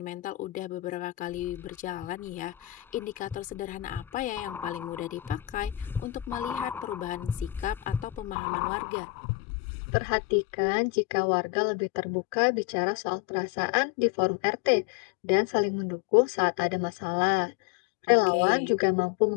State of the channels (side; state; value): right; drops out; at 8.3 s